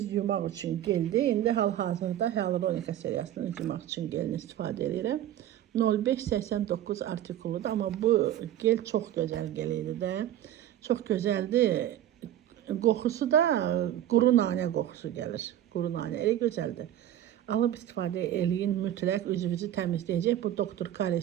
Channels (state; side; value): quieter; left; 11.9 dB